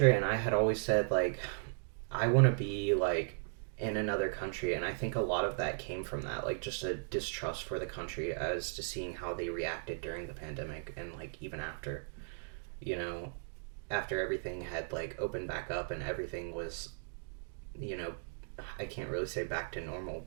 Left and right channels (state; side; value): silent; left; digital silence